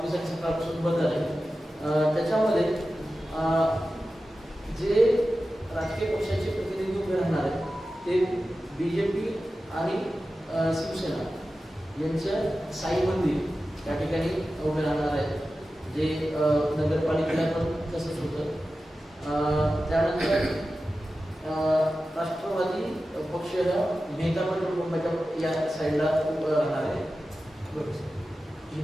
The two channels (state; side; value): normal; both; correlation 0.94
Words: सकाळपासून बंद आहे. त्याच्यामध्ये जे राजकीय पक्षाचे प्रतिनिधी उभे राहणार आहेत ते BJP आणि शिवसेना यांचं साई मंदिर त्या ठिकाणी उभे राहणार आहेत, जे नगरपालिकेला पण तसंच होतं. त्यानंतर राष्ट्रवादी पक्ष मेहता पेट्रोल पंपाच्या या साईडला उभं राहणार आहे.